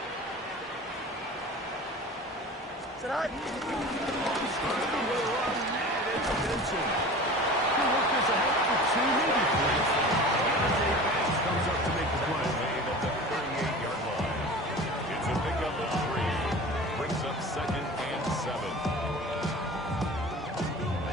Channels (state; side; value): normal; both; correlation 0.38